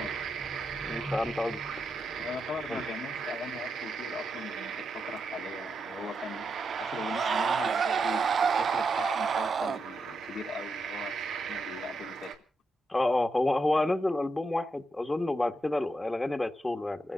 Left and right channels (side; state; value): both; normal; correlation 0.84